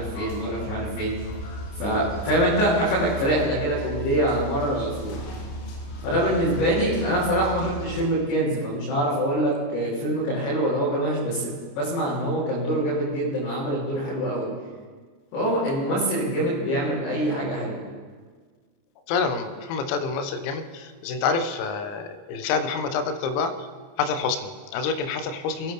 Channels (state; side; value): late; right; 29 ms